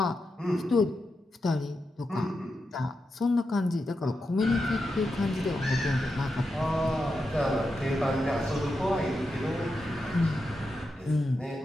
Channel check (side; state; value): both; normal; correlation 0.87